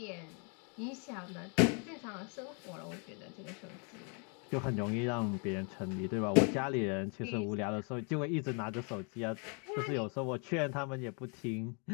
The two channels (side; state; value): right; quieter; 37.3 dB